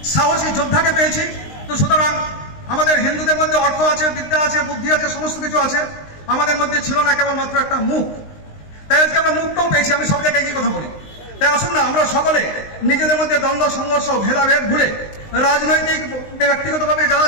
সাহসী যোদ্ধাকে পেয়েছি। তো সুতরাং আমাদের হিন্দুদের মধ্যে অর্থ আছে, বিদ্যা আছে, বুদ্ধি আছে, সমস্ত কিছু আছে, আমাদের মধ্যে ছিল না কেবলমাত্র একটা মুখ। তাই আজকে আমরা মুখটাও পেয়েছি। আমি সব জায়গায় একই কথা বলি। তাই আসুন না আমরা সকলে নিজেদের মধ্যে দ্বন্দ্ব সংঘর্ষ ভেদাভেদ ভুলে রাজনৈতিক ব্যক্তিগতভাবে যারা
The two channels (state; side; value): late; right; 19 ms